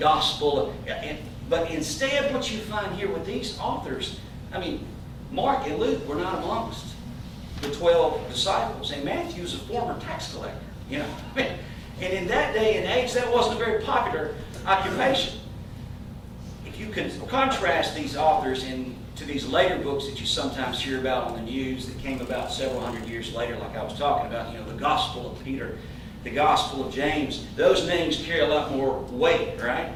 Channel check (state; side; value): identical; both; correlation 1.00